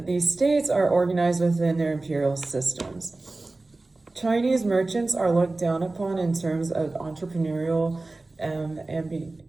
these states are organized within their imperial systems. Chinese merchants are looked down upon in terms of entrepreneurial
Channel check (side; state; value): left; quieter; 3.2 dB